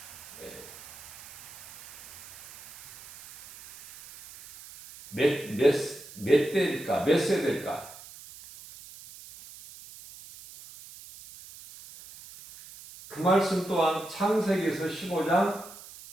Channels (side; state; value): right; noise; hiss, 17 dB below the sound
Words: 몇 대일까? 몇 세대일까? 그 말씀 또한 창세기에서 15장